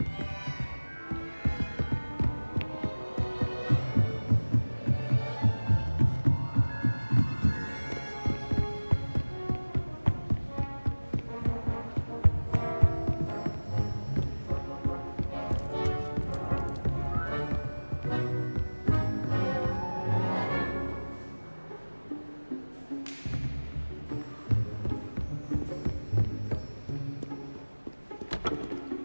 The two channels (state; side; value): inverted; both; correlation -1.00